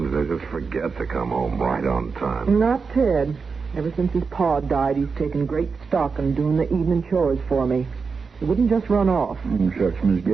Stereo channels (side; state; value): left; quieter; 5.1 dB